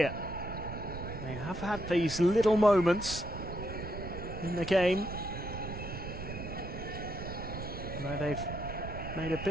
They have had these little moments in the game where they've made a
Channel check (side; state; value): right; noise; rumble, 8 dB below the sound